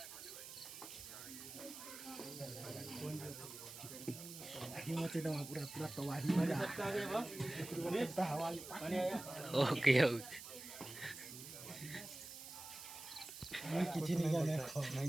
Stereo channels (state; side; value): noise; right; hiss, 11 dB below the sound